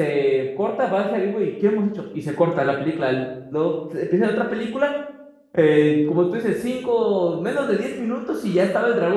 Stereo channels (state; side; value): identical; both; correlation 1.00